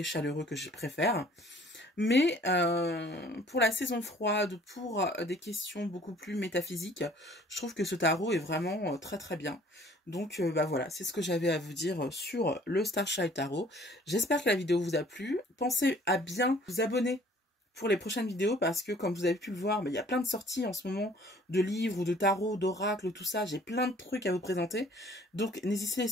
chaleureux que je préfère. Mais pour la saison froide, pour des questions beaucoup plus métaphysiques, je trouve que ce tarot est vraiment très très bien. Donc bah voilà, c'est ce que j'avais à vous dire sur le Starchild Tarot. J'espère que la vidéo vous a plu. Pensez à bien vous abonner pour les prochaines vidéos parce que comme vous avez pu le voir, il y a plein de sorties en ce moment de livres ou de tarot, d'oracles, tout ça. J'ai plein de trucs à vous présenter. Donc n'hésitez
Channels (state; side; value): normal; both; correlation 0.55